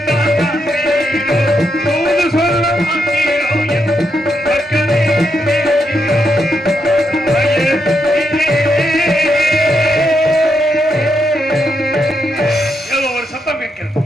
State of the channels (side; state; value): both; normal; correlation 0.81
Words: காண்பீரோ, தூது சொல்ல மாட்டீரோ, என் மக்களே பேசீரோ. ஏதோ ஒரு சத்தம் கேட்கிறது.